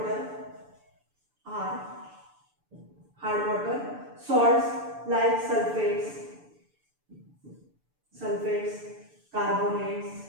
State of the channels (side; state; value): left; late; 6.9 ms